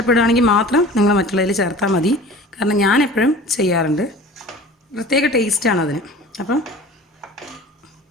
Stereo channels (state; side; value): normal; both; correlation 0.41